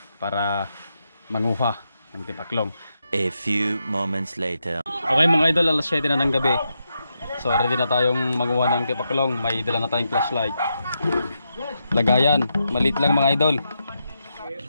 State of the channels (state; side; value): inverted; both; correlation -0.84